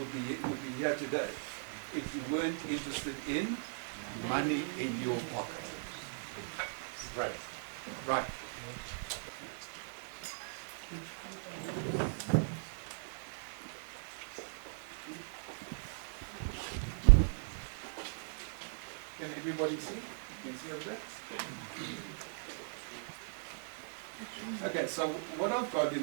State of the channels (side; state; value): left; silent; digital silence